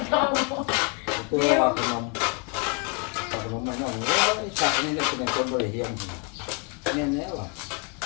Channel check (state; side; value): quieter; right; 34.2 dB